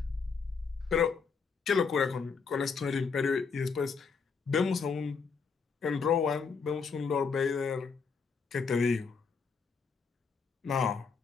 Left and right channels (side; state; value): right; quieter; 5.4 dB